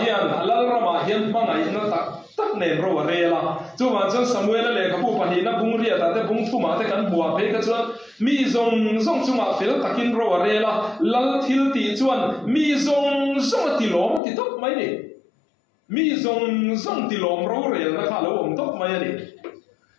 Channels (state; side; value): drops out; right; at 14.2 s